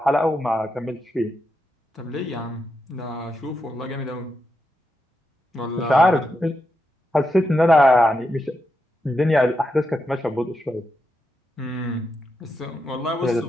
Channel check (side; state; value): both; normal; correlation 0.85